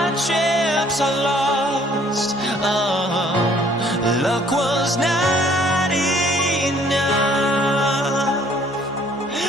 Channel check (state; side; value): normal; both; correlation 0.59